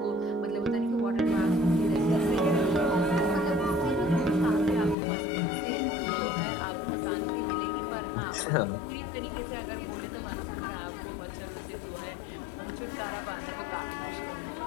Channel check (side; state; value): right; drops out; at 5.0 s